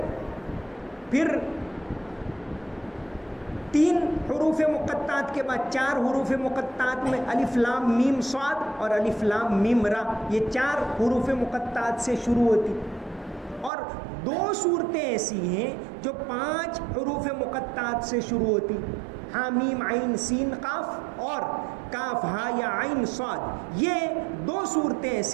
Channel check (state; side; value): drops out; left; at 13.7 s